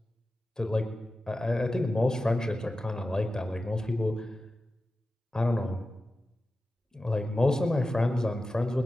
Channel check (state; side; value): normal; both; correlation 0.93